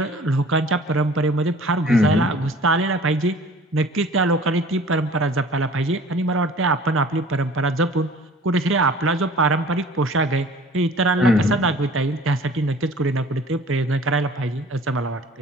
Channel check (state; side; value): normal; both; correlation 0.47